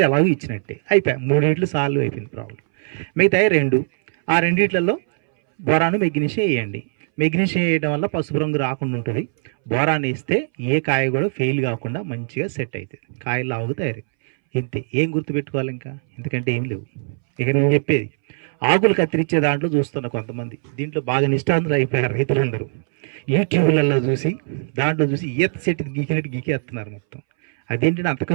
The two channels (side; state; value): left; silent; 63 dB below the other